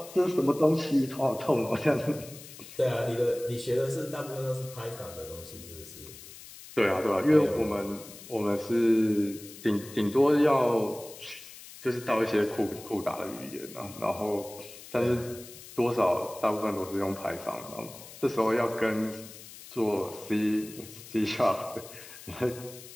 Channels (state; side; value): noise; left; hiss, 16 dB below the sound